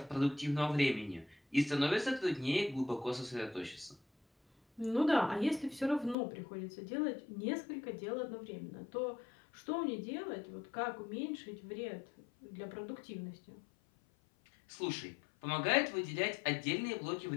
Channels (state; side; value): drops out; right; at 6.2 s